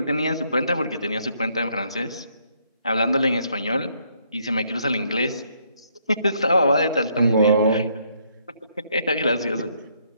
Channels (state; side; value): inverted; both; correlation -0.70